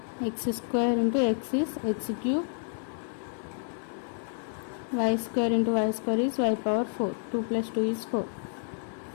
x square into x is x cube, y square into y square is y power 4, 2 plus 2 is 4.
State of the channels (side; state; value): right; silent; 58 dB below the other